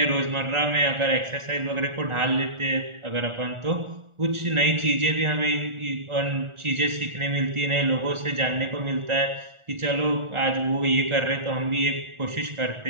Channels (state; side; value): late; left; 1.4 ms